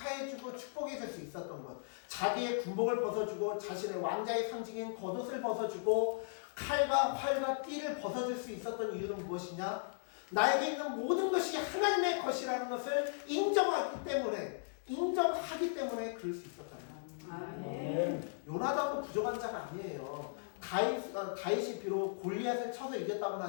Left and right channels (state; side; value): silent; right; digital silence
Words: 축복해줄 수 있었던 것. 자기의 군복을 벗어주고 자신의 왕자의 상징인 겉옷을 벗어주고 칼과 활과 띠를 벗어줄 수 있었던 이유는 무엇이냐? 나에게 있는 모든 것이 하나님의 것이라는 것을 인정하기 때문에 그럴 수 있었잖아요. 요나단도 부족한 자가 아니에요. 다윗이 비록 골리앗을 쳐서 이겼다고는